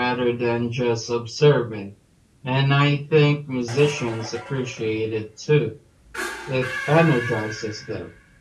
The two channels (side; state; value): both; identical; correlation 1.00